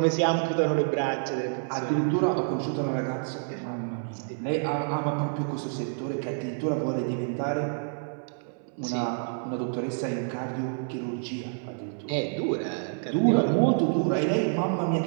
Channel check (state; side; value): silent; left; 59 dB below the other